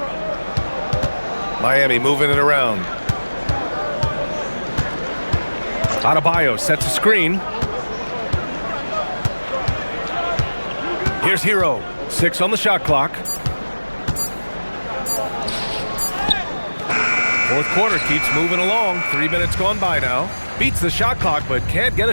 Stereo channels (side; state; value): both; inverted; correlation -1.00